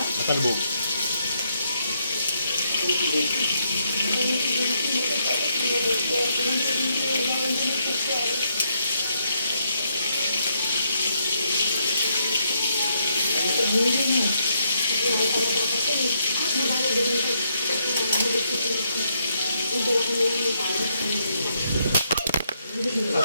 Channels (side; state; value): both; inverted; correlation -0.76